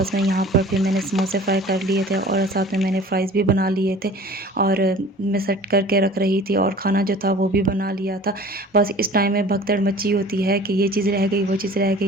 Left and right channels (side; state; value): both; normal; correlation 0.45